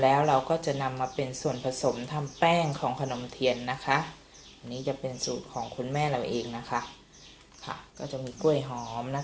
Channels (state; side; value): identical; both; correlation 1.00